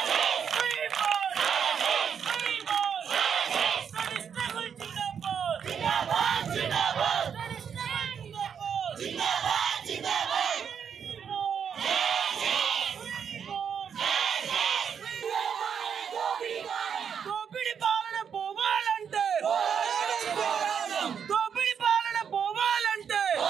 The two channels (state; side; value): quieter; left; 7.5 dB